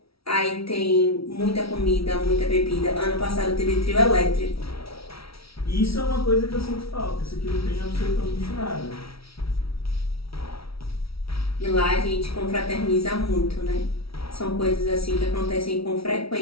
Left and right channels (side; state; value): right; late; 0.75 ms